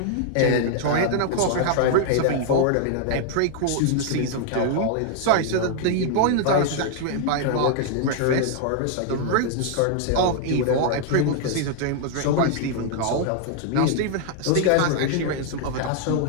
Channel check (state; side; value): different; both; correlation 0.00